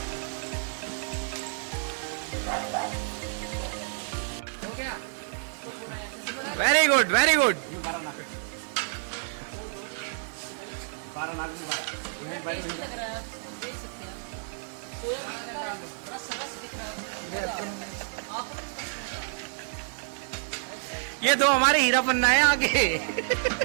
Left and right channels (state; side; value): silent; left; 56 dB below the other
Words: Very good, very good. ये दो हमारे हीरा पन्ना है आगे।